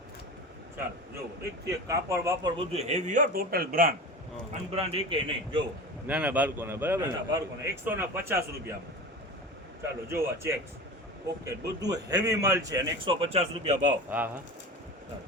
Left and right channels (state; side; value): normal; both; correlation 0.32